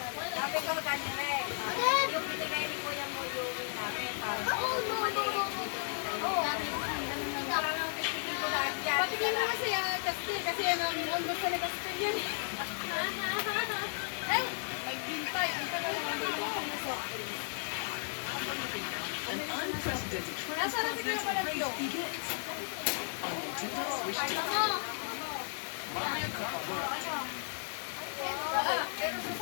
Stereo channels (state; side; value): silent; right; digital silence